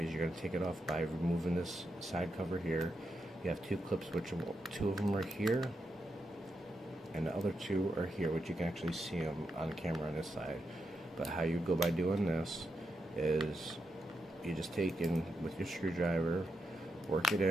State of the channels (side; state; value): both; normal; correlation 0.84